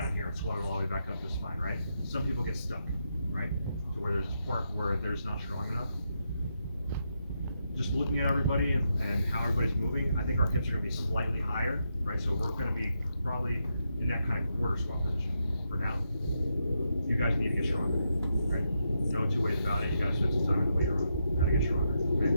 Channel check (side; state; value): both; inverted; correlation -0.82